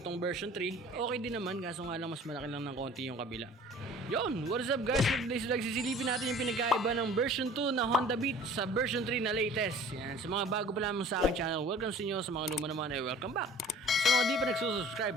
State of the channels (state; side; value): normal; both; correlation 0.48